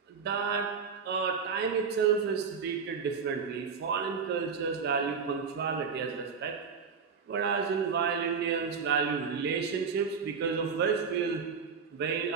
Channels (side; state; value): left; quieter; 5.8 dB